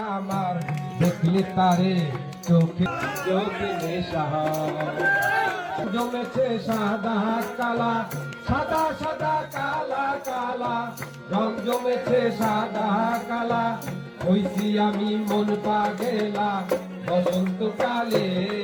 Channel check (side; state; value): both; identical; correlation 1.00